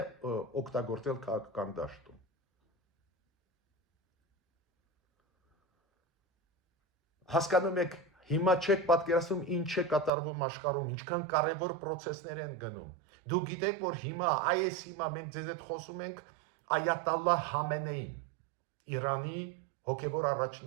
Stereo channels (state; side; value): drops out; left; at 10.1 s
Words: օգտագործել քաղաքական դաշտում։ Հասկանում եք, հիմա չեք պատկերացնում ինչ է կատարվում աշխարհում, ինչքան կարևոր process-ներ են գնում։ Դու գիտեք, որ հիմա մենք ձեզ հետ խոսում ենք Այաթալլահ Խամենեին, Իրանի հոգևոր